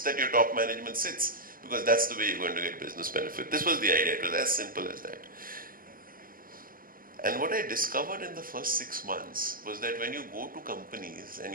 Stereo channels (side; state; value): left; late; 0.41 ms